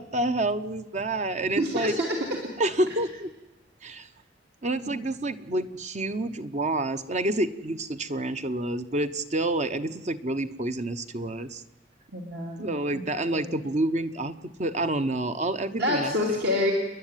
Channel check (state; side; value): normal; both; correlation 0.34